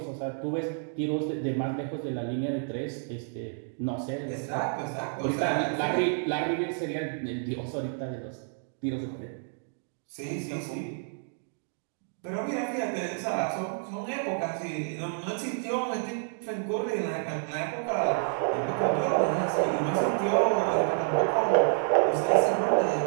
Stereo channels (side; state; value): left; silent; digital silence